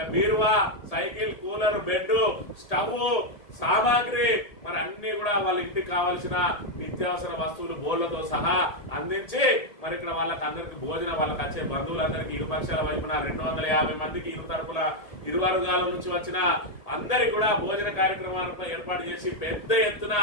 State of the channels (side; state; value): right; late; 1.8 ms